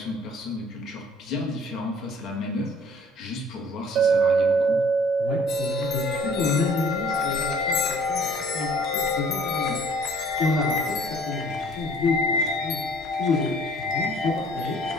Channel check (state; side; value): normal; both; correlation 0.55